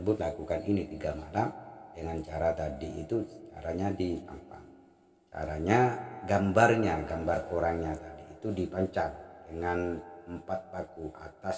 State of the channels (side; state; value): both; identical; correlation 1.00